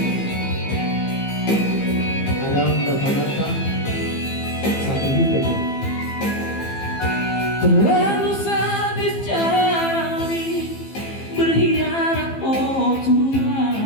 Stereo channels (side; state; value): right; late; 15 ms